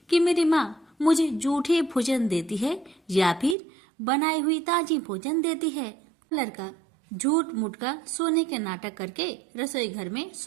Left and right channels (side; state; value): left; drops out; at 3.6 s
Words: कि मेरी माँ मुझे जूठे भोजन देती है या फिर बनाई हुई ताजी भोजन देती है। लड़का झूठ मूठ का सोने के नाटक करके रसोई घर में